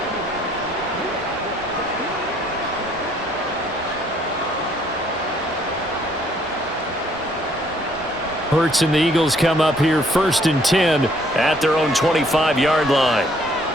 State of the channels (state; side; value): normal; both; correlation 0.64